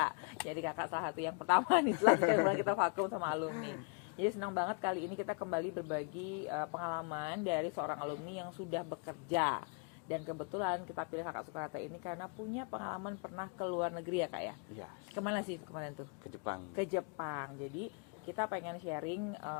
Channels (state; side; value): quieter; right; 34.8 dB